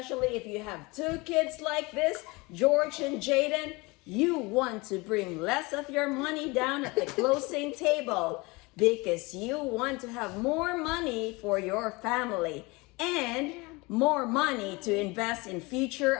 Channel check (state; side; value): quieter; right; 24.9 dB